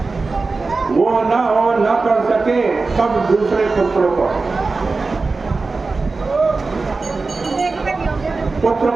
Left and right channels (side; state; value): left; quieter; 3.9 dB